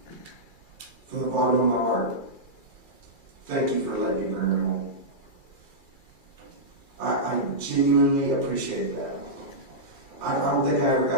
From the bottom of my heart, thank you for letting me bring her home. I genuinely appreciate that. I don't think I ever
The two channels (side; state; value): right; late; 2.4 ms